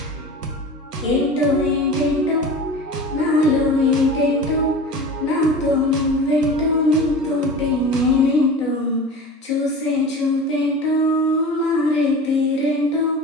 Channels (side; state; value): both; normal; correlation 0.35